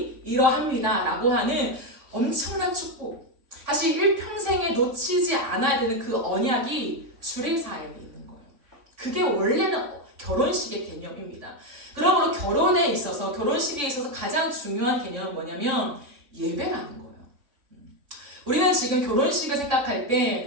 이러합니다 라고 하는 엄청난 축복. 사실 일평생에 놓치지 않아야 되는 그 언약이 주례사에 있는 거예요. 그게 원래는 결혼식의 개념입니다. 그러므로 결혼식에 있어서 가장 중요한 개념은 뭐냐면 예배라는 거예요. 우리는 지금 결혼식을 생각할 때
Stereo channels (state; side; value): late; left; 3.5 ms